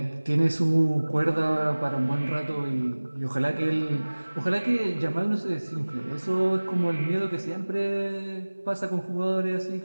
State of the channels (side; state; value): both; inverted; correlation -1.00